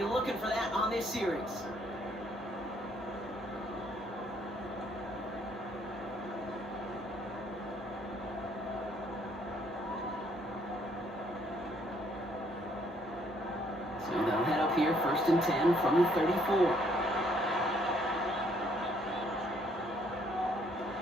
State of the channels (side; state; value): both; normal; correlation 0.66